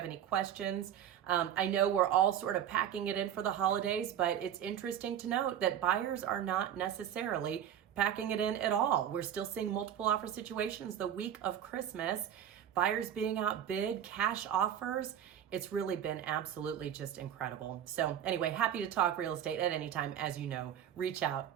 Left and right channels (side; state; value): left; quieter; 9.9 dB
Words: any questions. I know we're all sort of packing it in for the holidays, but it's interesting to note that buyers are not necessarily packing it in at all. We're still seeing multiple offer situations the week of Christmas, buyers being outbid, cash offers. It's really been absolutely just incredible. So anyway, happy to talk real estate at any time. As you know, reach